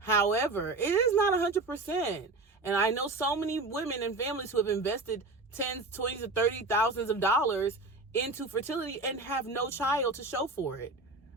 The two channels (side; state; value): left; quieter; 3.3 dB